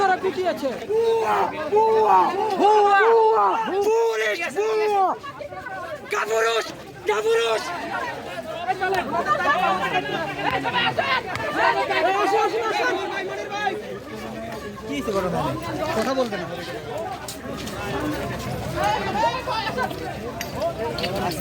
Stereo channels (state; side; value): identical; both; correlation 1.00